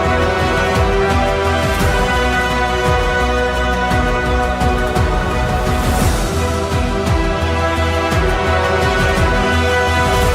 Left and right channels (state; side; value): identical; both; correlation 1.00